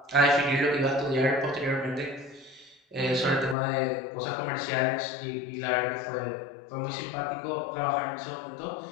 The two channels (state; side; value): drops out; right; at 3.6 s